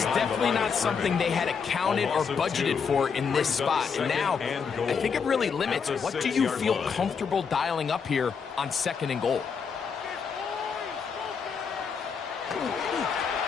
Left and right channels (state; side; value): quieter; right; 6.1 dB